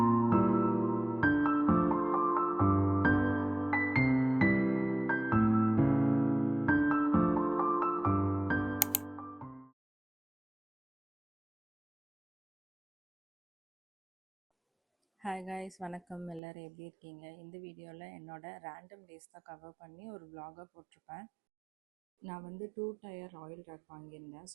guys, வணக்கம். எல்லோரும் எப்படி இருக்கீங்க? இந்த வீடியோவில் என்னோட ரேண்டம் டேஸ் தான் கவர் பண்ணி ஒரு vlog-ஆ போட்டிருப்பேன். நான் வந்து 2 டயர் ஆயில் ரேக் வாங்கியிருந்தேன்.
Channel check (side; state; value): left; drops out; at 16.4 s